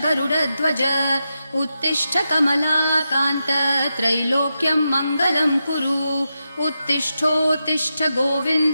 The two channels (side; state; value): both; inverted; correlation -0.88